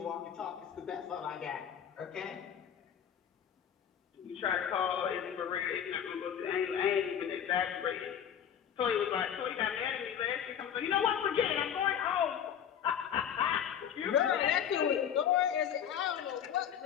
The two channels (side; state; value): right; quieter; 8.9 dB